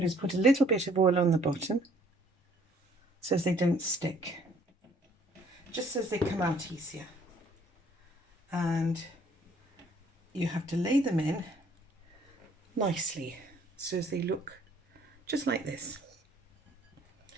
do is put a little bit of oil on the bottom so as they don't stick, just so as they come out easier. And you have to lay them in nicely so as they look just like this.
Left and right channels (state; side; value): normal; both; correlation 0.60